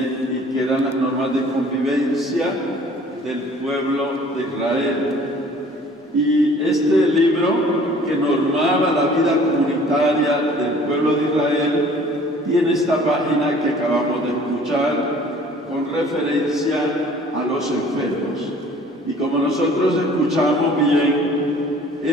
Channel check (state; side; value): normal; both; correlation 0.52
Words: y que eran las normas de convivencia del pueblo de Israel. Y este libro que normaba la vida comunitaria del pueblo de Israel tiene esta página que acabamos de escuchar con referencia a los enfermos. Y como nosotros escuchamos bien,